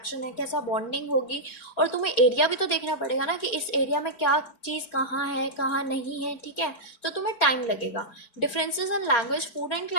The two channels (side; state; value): right; late; 4.6 ms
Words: है, कैसा बॉन्डिंग होगी। और तुम्हें एरिया भी तो देखना पड़ेगा ना कि इस एरिया में क्या चीज़ कहाँ है, कहाँ नहीं है, ठीक है। तो तुम्हें टाइम लगेगा। Differences in language, food and